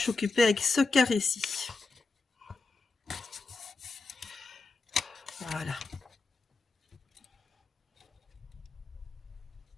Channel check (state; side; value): quieter; right; 3.8 dB